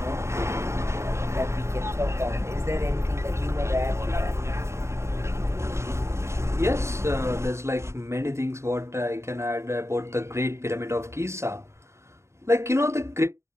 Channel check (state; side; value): late; left; 0.13 ms